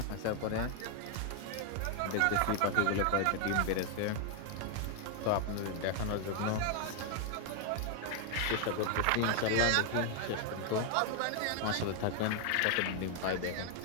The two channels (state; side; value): different; both; correlation 0.00